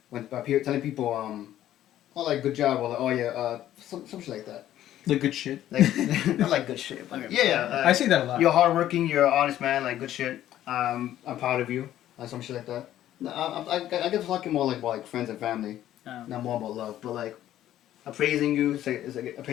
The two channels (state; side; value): quieter; right; 12.6 dB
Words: when telling people oh like good job or like oh yeah some shit like that. Like good shit. Like I like good shit. But yeah. I see that a lot. You're hardworking. You're an honest man. Like good shit. I'm proud of you. Some shit like that. No, I get talking more like about like friends and family, not more about love. But like appraising you, it's like